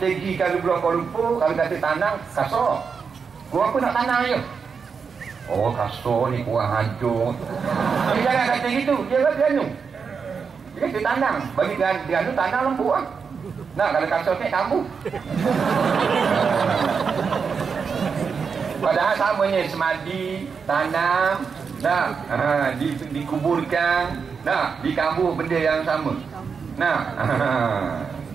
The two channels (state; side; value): quieter; left; 5.8 dB